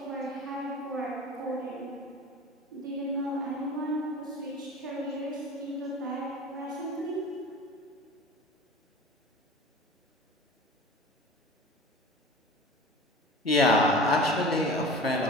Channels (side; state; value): both; normal; correlation 0.38